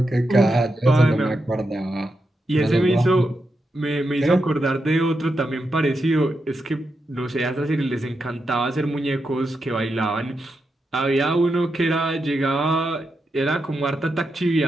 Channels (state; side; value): normal; both; correlation 0.86